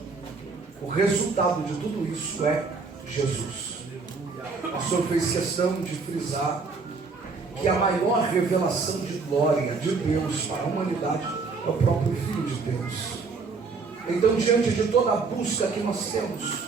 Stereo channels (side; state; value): left; quieter; 4.5 dB